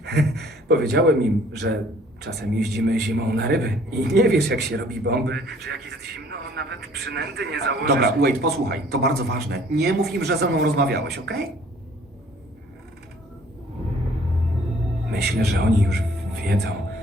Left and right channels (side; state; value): both; normal; correlation 0.56